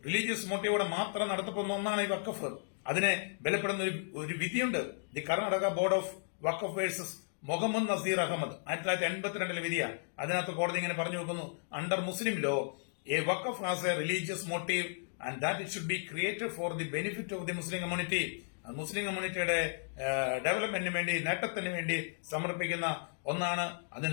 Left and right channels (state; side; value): silent; right; digital silence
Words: റിലീജിയസ് മോട്ടീവോടെ മാത്രം നടത്തപ്പെടുന്ന ഒന്നാണ് ഈ വഖഫ്. അതിനെ ബലപ്പെടുന്ന ഒരു വിധിയുണ്ട്. The Karnataka board of waqf versus Muhammad Nazeer Ahmed 1982 വിധിയാണ്. അതിനകത്ത് കോടതി ഇങ്ങനെ പറഞ്ഞു വെക്കുന്നു: under Muslim law a waqf has a religious motive and that it should be created for the benefit of the Muslim community. Muslim കമ്മ്യൂണിറ്റിയുടെ ഡെവലപ്മെന്റിന് വേണ്ടി, നേട്ടത്തിന് വേണ്ടി സമർപ്പിക്കുന്ന ഒന്നാണ്.